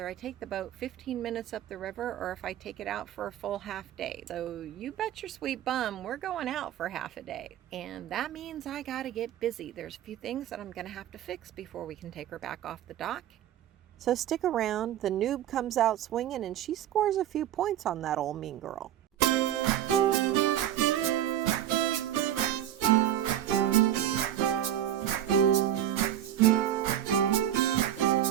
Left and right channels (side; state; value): left; quieter; 11.3 dB